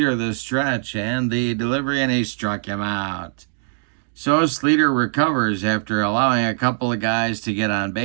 the stretch and the delivery, and he struck him out. So Sleeter recovers after allowing a couple of guys to get on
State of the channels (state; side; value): silent; left; digital silence